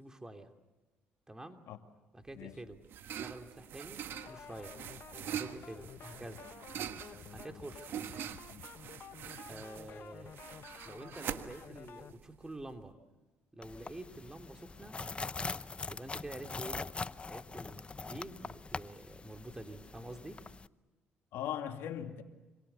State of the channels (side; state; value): both; normal; correlation 0.49